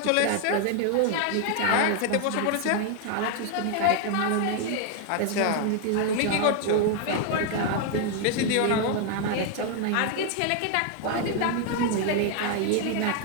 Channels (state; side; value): different; both; correlation 0.00